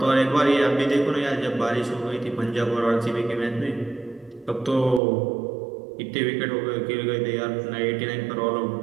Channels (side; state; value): left; drops out; at 5.0 s